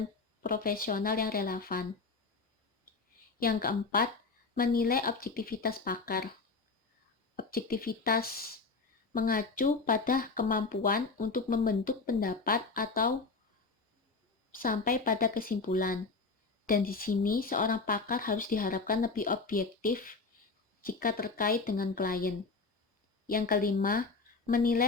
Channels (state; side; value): quieter; right; 4.1 dB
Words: profesional yang relevan. Yang keempat, menilai objektivitas pakar. Objektivitas mengacu pada kemampuan untuk membentuk pendapat atau sampai pada kesimpulan. Dan di sini seorang pakar harus diharapkan lebih objektif jika terkait dengan klien. Yang kelima,